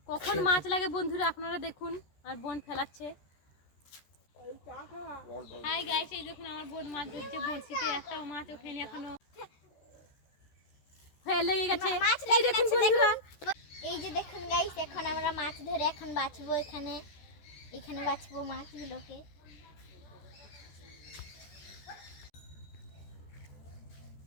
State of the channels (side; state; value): right; late; 13 ms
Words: কখন মাছ লাগে বন্ধুরা আপনারা দেখুন। আর বোন ফেলাচ্ছে। হাই গাইস, এই দেখুন আমার বোন মাছ ধরছে বড়শিতে, একটাও মাছ ওঠেনি এখনো, লেগে গেছে। এই দেখুন বন্ধুরা, এই যে দেখুন গাইস, এখন আমরা মাছ ধরে এখন বাছবো। এখানে বাছবো মাছগুলোকে।